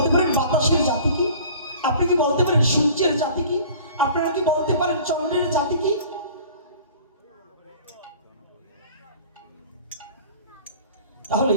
পারেন বাতাসের জাতি কি? আপনি কি বলতে পারেন সূর্যের জাতি কি? আপনারা কি বলতে পারেন চন্দ্রের জাতি কি? তাহলে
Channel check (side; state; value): both; inverted; correlation -0.46